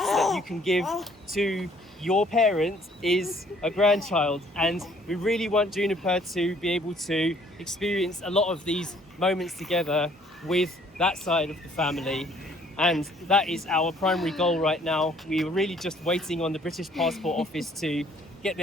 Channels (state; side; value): normal; both; correlation 0.60